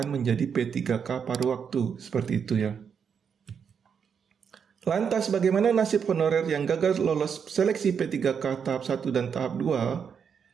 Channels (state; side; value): quieter; left; 6.9 dB